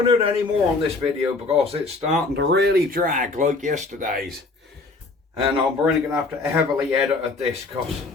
to do any more on this video because it's starting to really drag like yesterday's. And I'm really going to have to heavily edit this because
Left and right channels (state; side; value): quieter; right; 3.5 dB